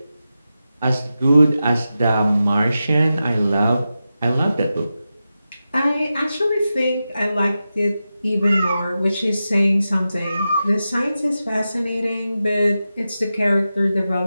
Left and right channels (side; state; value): both; inverted; correlation -0.91